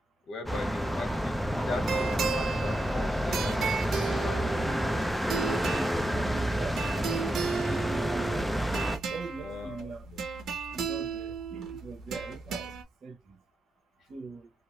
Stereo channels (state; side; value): normal; both; correlation 0.87